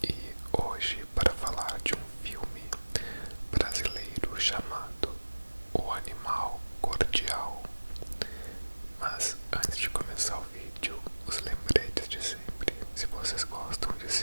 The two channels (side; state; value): both; inverted; correlation -1.00